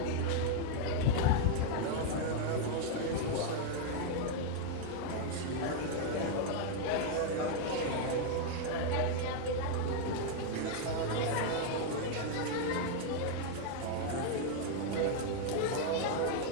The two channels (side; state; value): both; different; correlation 0.00